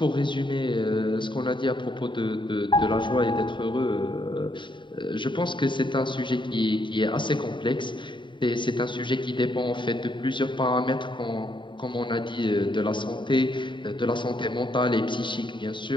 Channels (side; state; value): right; late; 0.23 ms